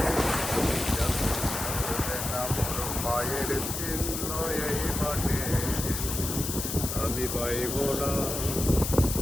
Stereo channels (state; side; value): noise; left; hiss, 4 dB below the sound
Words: মোর মায়ের চিহ্ন এই মাঠে, আমি পাইব না,